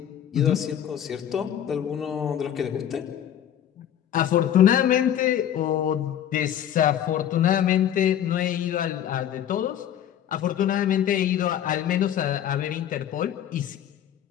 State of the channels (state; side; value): quieter; right; 10.3 dB